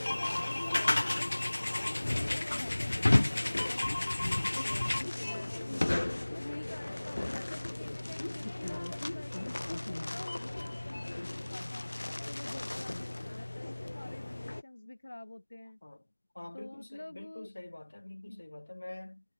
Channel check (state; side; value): inverted; both; correlation -1.00